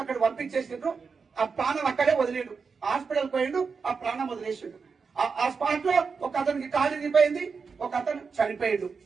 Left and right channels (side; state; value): left; quieter; 5.3 dB